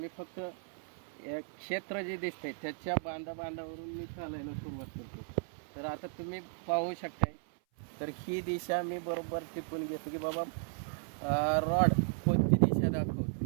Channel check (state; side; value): silent; left; 54 dB below the other